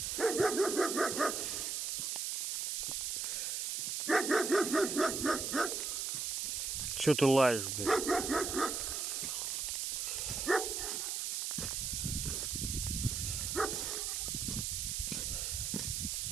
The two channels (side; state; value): right; noise; hiss, 1 dB below the sound